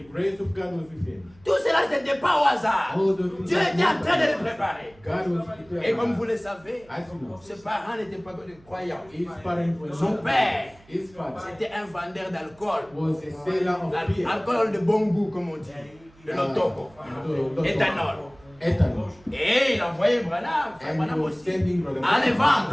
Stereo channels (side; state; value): right; noise; hum, 27 dB below the sound